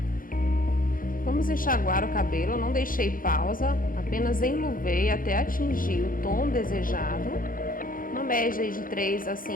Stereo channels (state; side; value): late; right; 0.40 ms